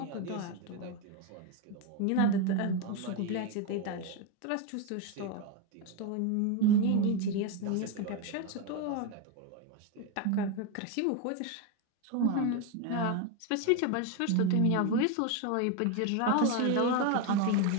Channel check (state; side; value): different; both; correlation 0.02